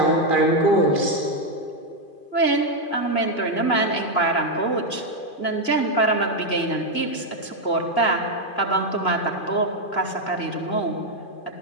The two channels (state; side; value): late; right; 2.5 ms